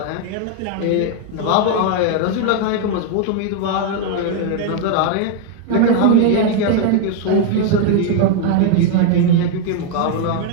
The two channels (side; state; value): both; different; correlation 0.00